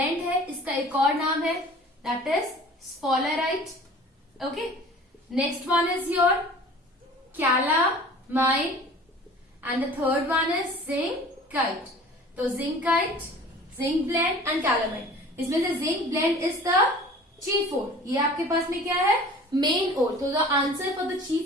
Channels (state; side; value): normal; both; correlation 0.45